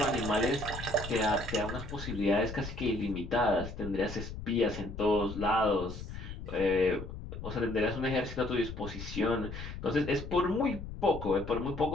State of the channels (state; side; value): noise; left; rumble, 9 dB below the sound